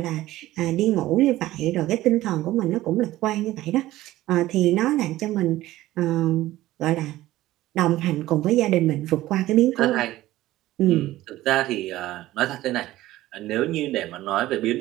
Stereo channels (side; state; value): left; quieter; 16.0 dB